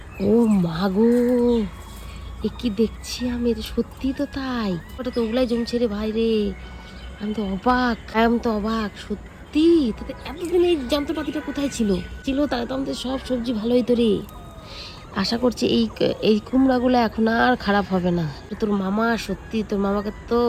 ও মাগো, এ কি দেখছি আমি, সত্যি তো তাই, ওটা তো ওগুলাই জমছে রে ভাই রে। আমি তো অবাক সত্যি। তাতে এতদিন এই যন্ত্রপাতিটা কোথায় ছিল তাহলে তো আমাদের সব সবজি ভালো হইতো রে। আশা করছি এই কুমড়াগুলো এখন আর খারাপ হবে না। তোর মামা সত্যি, তোর মামাকে তো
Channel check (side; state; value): both; identical; correlation 1.00